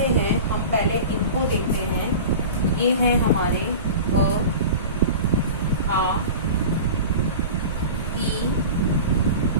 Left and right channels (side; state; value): both; inverted; correlation -0.34